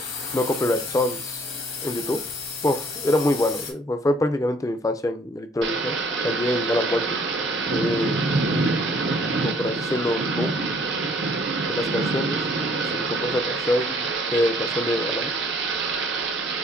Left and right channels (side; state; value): both; normal; correlation 0.59